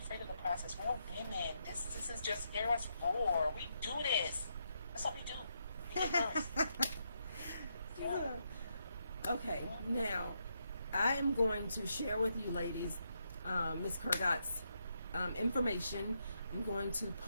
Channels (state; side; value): inverted; both; correlation -0.80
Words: of the process. We're women. This is just Eros 4. We do this. That's what we do. We do first. Yeah. Okay, now I am going to share with you ladies Miss Kurgat's information. I'm going to